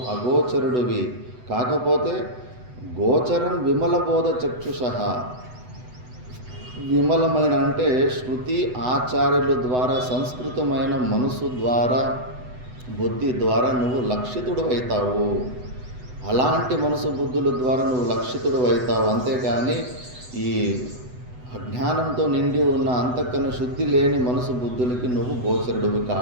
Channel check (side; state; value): left; late; 8.0 ms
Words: అగోచరుడివి. కాకపోతే గోచరం విమల బోధ చక్షుషః, విమలమైన అంటే శృతి ఆచార్యుల ద్వారా సంస్కృతమైన మనసు ద్వారా బుద్ధి ద్వారా నువ్వు లక్షితుడు అవుతావు. అలాంటి మనసు బుద్ధుల ద్వారా నువ్వు లక్షితుడు అవుతావు. అంతేకాని ఈ అజ్ఞానంతో నిండి ఉన్న అంతకన్నా శుద్ధి లేని మనసు బుద్ధులకి నువ్వు గోచరుడివి